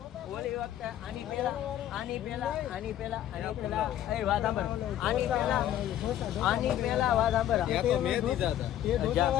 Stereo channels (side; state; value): right; quieter; 11.9 dB